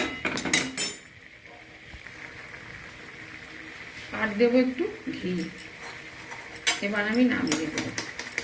আর দেবো একটু ঘি। এবার আমি নামিয়ে দেবো।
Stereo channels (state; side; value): identical; both; correlation 1.00